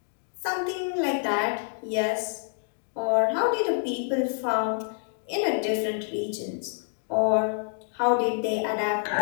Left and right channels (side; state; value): right; silent; digital silence